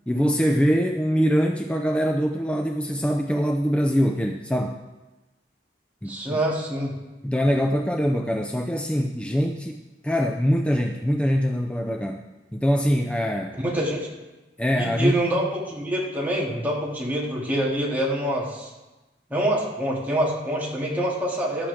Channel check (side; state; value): both; normal; correlation 0.81